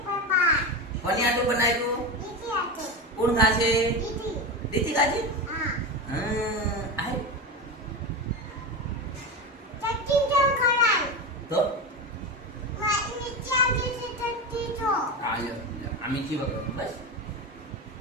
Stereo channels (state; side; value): normal; both; correlation 0.20